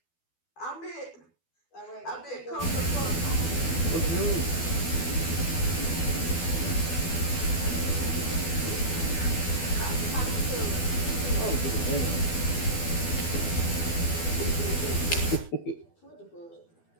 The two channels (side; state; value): right; late; 12 ms